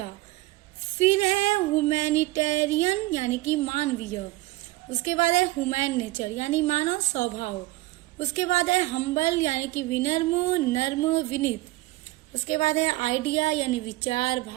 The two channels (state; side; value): quieter; left; 19.7 dB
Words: फिर है ह्यूमैनिटेरियन यानी कि मानवीय। उसके बाद है ह्यूमैन नेचर यानी मानव स्वभाव। उसके बाद है हम्बल यानी कि विनम्र, नर्म, विनीत। उसके बाद है आइडिया यानी विचार,